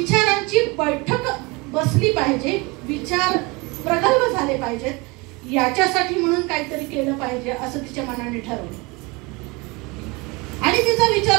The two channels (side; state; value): left; quieter; 25.7 dB